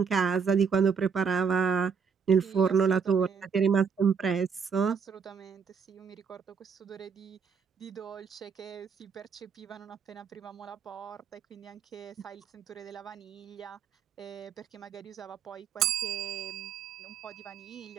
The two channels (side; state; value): left; quieter; 6.3 dB